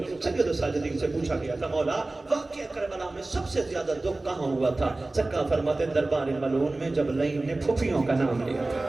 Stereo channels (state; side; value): quieter; left; 3.0 dB